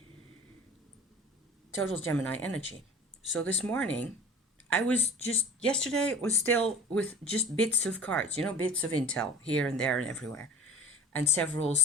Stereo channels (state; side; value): normal; both; correlation 0.42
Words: Total Gemini energy. So this morning, yesterday was still with just bits of cards, bits of intel here and there and everywhere. And several